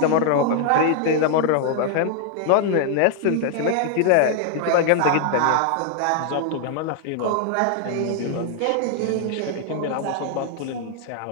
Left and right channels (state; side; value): different; both; correlation 0.00